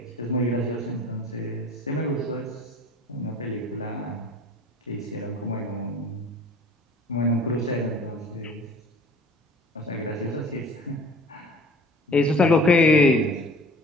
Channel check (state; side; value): normal; both; correlation 0.46